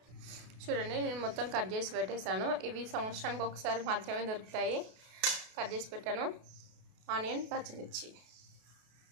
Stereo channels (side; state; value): left; late; 32 ms